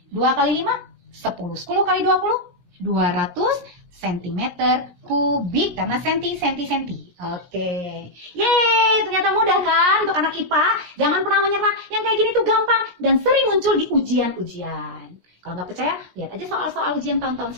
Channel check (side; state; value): left; late; 17 ms